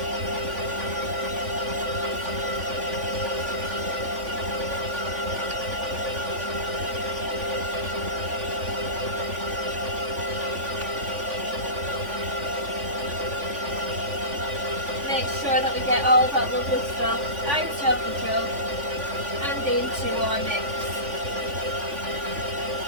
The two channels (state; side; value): late; left; 3.5 ms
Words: Make sure that we get all that lovely stuff out of the jug and into our mix.